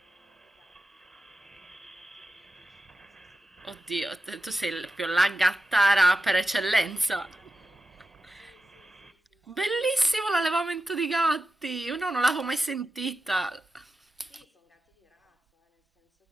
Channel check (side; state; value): both; normal; correlation 0.91